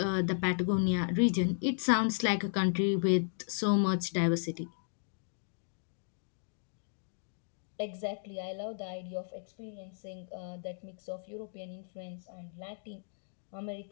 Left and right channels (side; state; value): right; silent; digital silence